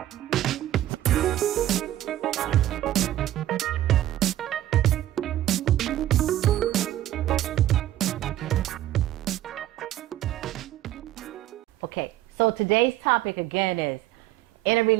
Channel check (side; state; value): left; quieter; 13.4 dB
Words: Okay, so today's topic again is, in a